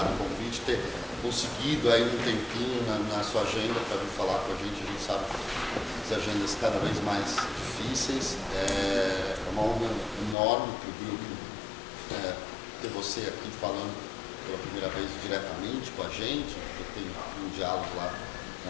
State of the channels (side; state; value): right; drops out; at 10.4 s